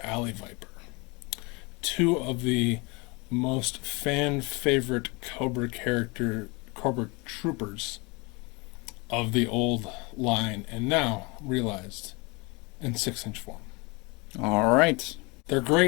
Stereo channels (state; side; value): quieter; right; 27.9 dB